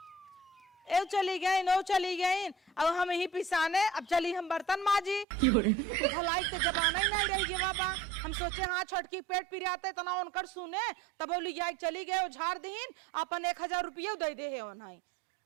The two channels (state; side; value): drops out; left; at 5.2 s